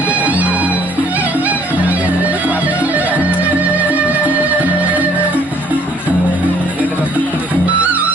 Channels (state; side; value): normal; both; correlation 0.61